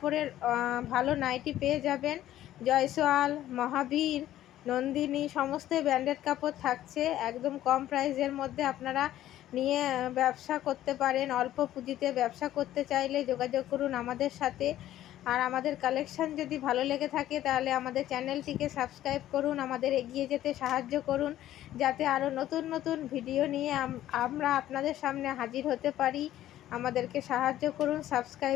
ভালো নাইটি পেয়ে যাবেন। জয়সওয়াল, মহাবীর, নন্দিনী সমস্ত ব্র্যান্ডেড কাপড় থাকছে একদম কম প্রাইসের মধ্যে। আপনারা নিয়ে ব্যবসা করতে পারেন। অল্প পুঁজিতে ব্যবসা করতে চাইলে যোগাযোগ করুন আমাদের সাথে। আর আমাদের কালেকশান যদি ভালো লেগে থাকে তাহলে আমাদের চ্যানেলটিকে সাবস্ক্রাইব করুন, আমাদের এগিয়ে যেতে সাহায্য করুন, যাতে আরও নতুন নতুন ভিডিও নিয়ে আমরা আপনাদের সামনে হাজির হতে পারি। আমাদেরকে সাহায্য করুন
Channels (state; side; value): quieter; right; 13.2 dB